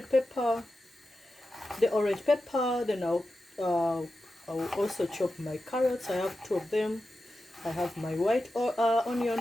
pepper, the orange pepper. Then I'll also chop my carrots. I have 2 of them. I have my white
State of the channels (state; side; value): normal; both; correlation 0.91